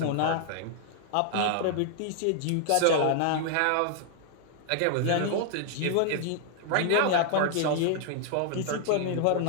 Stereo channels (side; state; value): both; different; correlation -0.01